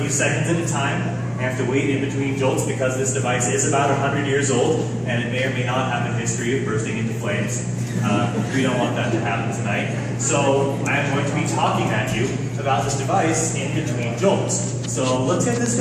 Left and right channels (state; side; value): identical; both; correlation 1.00